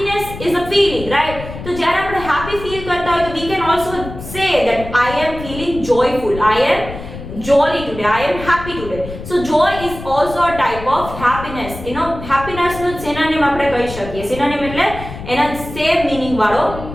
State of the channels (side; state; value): left; noise; rumble, 11 dB below the sound